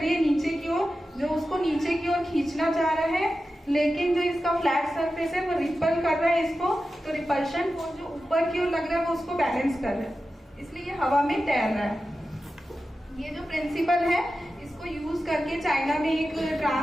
है नीचे की ओर, जो उसको नीचे की ओर खींचना चाह रहा है, लेकिन जो इसका फ्लैट सरफेस है वो रिपल कर रहा है इसको। तो रिपल्शन फोर्स जो ऊपर की ओर लग रहा है वो उसको बैलेंस कर रहा है, इसलिए ये हवा में तैर रहा है। ये जो प्रिंसिपल है इसको यूज करके चाइना में एक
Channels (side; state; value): both; normal; correlation 0.92